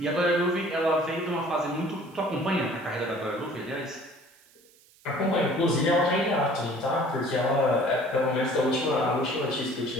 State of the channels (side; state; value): right; noise; hiss, 29 dB below the sound